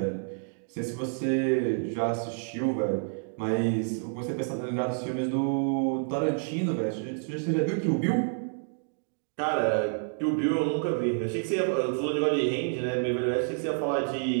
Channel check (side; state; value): left; silent; digital silence